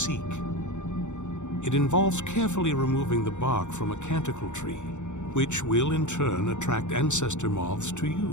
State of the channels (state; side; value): late; right; 0.84 ms